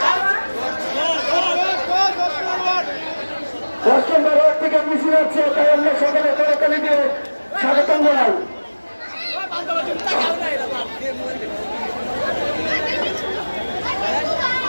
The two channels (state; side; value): inverted; both; correlation -1.00